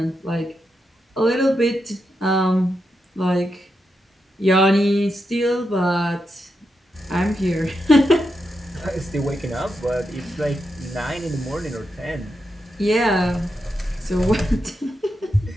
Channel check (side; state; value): both; normal; correlation 0.86